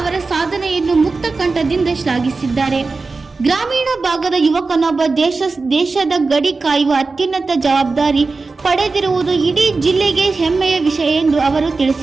ಸಾಧನೆಯನ್ನು ಮುಕ್ತ ಕಂಠದಿಂದ ಶ್ಲಾಘಿಸಿದ್ದಾರೆ. ಗ್ರಾಮೀಣ ಭಾಗದ ಯುವಕನೊಬ್ಬ ದೇಶದ ಗಡಿ ಕಾಯುವ ಅತ್ಯುನ್ನತ ಜವಾಬ್ದಾರಿ ಪಡೆದಿರುವುದು ಇಡೀ ಜಿಲ್ಲೆಗೆ ಹೆಮ್ಮೆಯ ವಿಷಯ ಎಂದು ಅವರು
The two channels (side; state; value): left; quieter; 4.0 dB